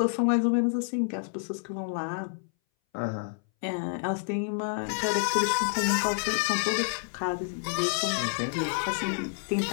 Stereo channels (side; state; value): right; silent; 59 dB below the other